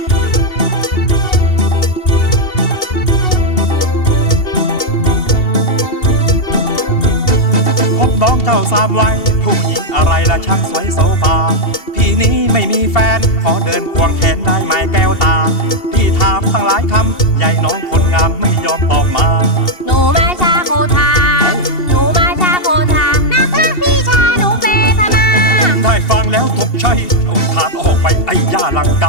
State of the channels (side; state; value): right; late; 2.7 ms